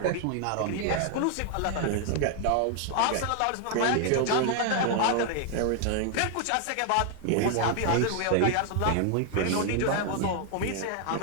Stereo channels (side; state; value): both; different; correlation 0.00